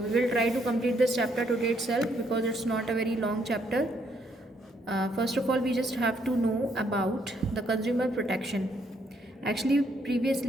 will try to complete this chapter today itself because it's not a very long chapter. First of all, we just have to know about the consumer protection. Actually,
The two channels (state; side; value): normal; both; correlation 0.71